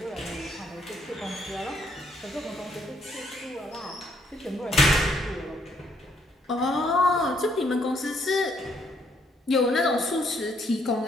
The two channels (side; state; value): both; normal; correlation 0.70